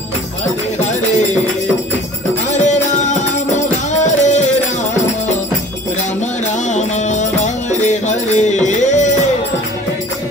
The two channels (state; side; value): normal; both; correlation 0.47